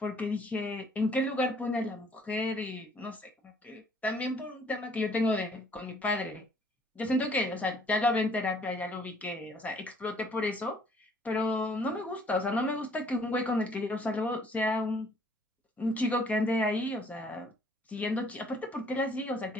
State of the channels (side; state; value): both; normal; correlation 0.61